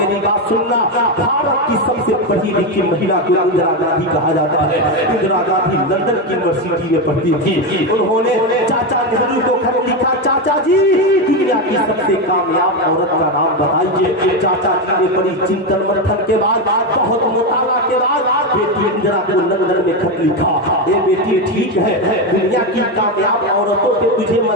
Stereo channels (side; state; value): both; normal; correlation 0.11